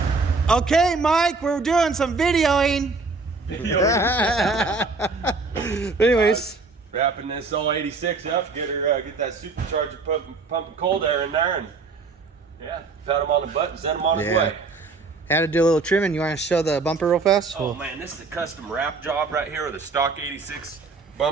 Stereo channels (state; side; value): quieter; left; 4.0 dB